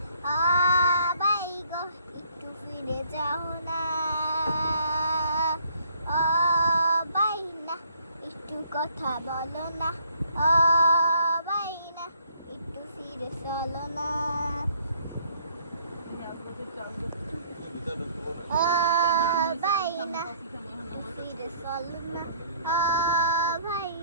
ও ভাই গো একটু ফিরে যাও না, ও ভাই না একটু কথা বলো না, ও ভাই না একটু ফিরে চলো না, ও ভাই না একটু ফিরে চলো না, ও ভাই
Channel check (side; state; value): both; inverted; correlation -0.61